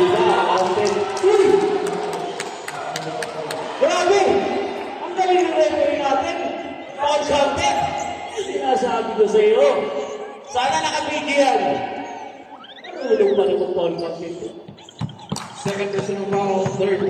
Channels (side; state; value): both; identical; correlation 1.00